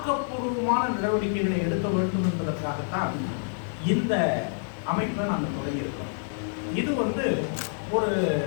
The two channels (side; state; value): right; silent; digital silence